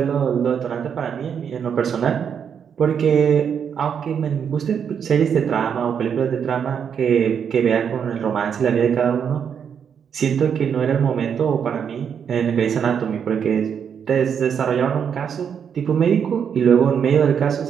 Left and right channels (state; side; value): quieter; left; 7.5 dB